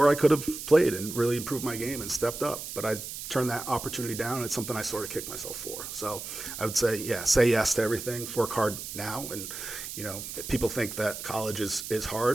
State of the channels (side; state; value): right; noise; hiss, 8 dB below the sound